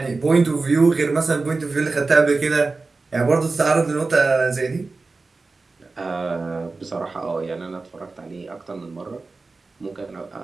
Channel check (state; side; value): quieter; left; 3.8 dB